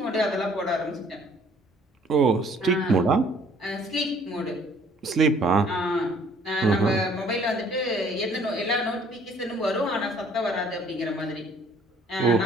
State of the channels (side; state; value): both; normal; correlation 0.58